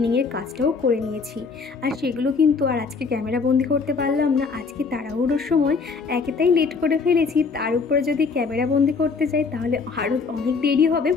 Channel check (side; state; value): right; quieter; 4.8 dB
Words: কাজটাও করে নিয়েছি। আর সেগুলো কিন্তু আর আজকে ক্যামেরা বন্দি করতে পারলাম না, আজকে তাড়াহুড়োর সময় একেতাই লেট করে ফেলেছি, তার উপরে যদি ক্যামেরা বন্দি করতে যাই তাহলে আরও অনেক দেরি হবে,